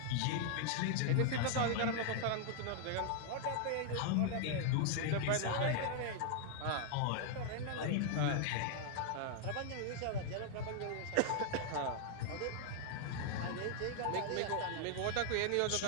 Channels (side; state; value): both; different; correlation 0.00